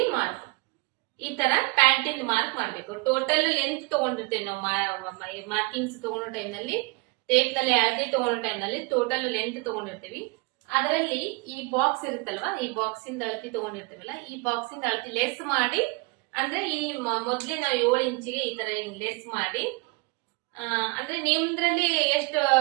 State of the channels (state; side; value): quieter; left; 27.8 dB